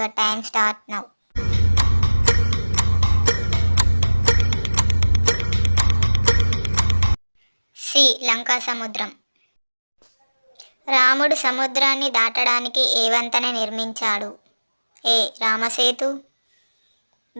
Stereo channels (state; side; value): inverted; both; correlation -1.00